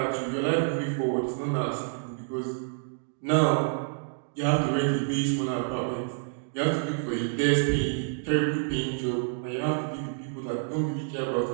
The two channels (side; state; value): left; silent; digital silence